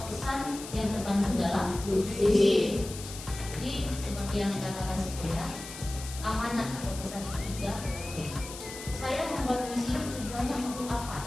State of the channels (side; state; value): left; noise; hiss, 12 dB below the sound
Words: pesan yang terkandung dalam puisi. Jadi seperti yang dikatakan sebelumnya, amanat atau pesan itu juga penting. Saya membuat puisi tujuannya untuk